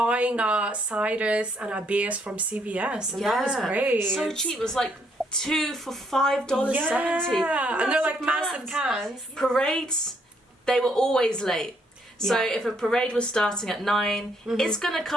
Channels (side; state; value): both; normal; correlation 0.71